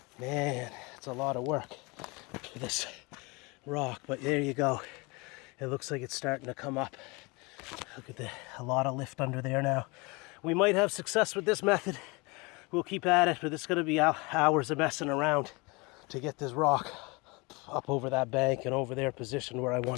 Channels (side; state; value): right; quieter; 26.8 dB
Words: Man, it's a lot of work for this rock, but there you go. It looks like it's starting to come up. Look at a lot of lift under there now. We might have success with this method. We'll keep at it, but it's going to be hours of messing around to get this rock up over that bank and over there positioned where I